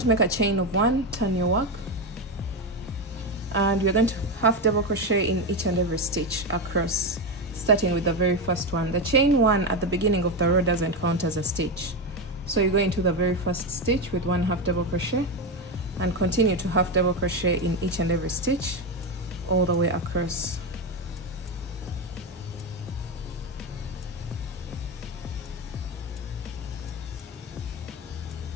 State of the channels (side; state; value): both; normal; correlation 0.13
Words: make a chain of 1, turn your work, and you're going to 1/2 double crochet in each and every stitch across, starting with the very first one. The chain 1 at the beginning of the row doesn't count as a stitch, so you go into the very first stitch with 1/2 double crochet and continue to 1/2 double crochet in each and every stitch all the way across.